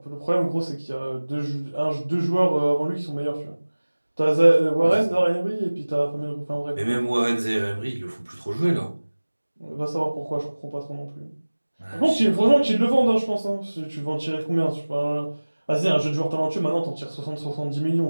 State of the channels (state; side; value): inverted; both; correlation -1.00